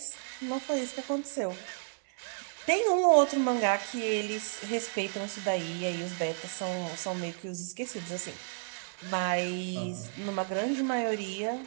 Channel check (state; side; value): silent; left; 57 dB below the other